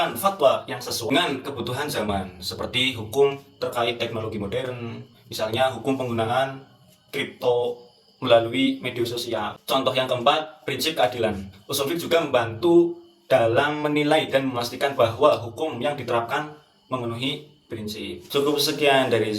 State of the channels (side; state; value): both; identical; correlation 1.00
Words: fatwa yang sesuai dengan kebutuhan zaman, seperti hukum terkait teknologi modern, misalnya hukum penggunaan kripto melalui media sosial. Contoh yang keempat, prinsip keadilan. Usul fiqh juga membantu dalam menilai dan memastikan bahwa hukum yang diterapkan memenuhi prinsip. Cukup sekian dari